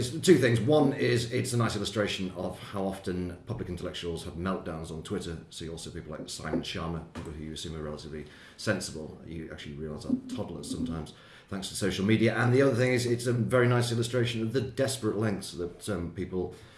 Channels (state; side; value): identical; both; correlation 1.00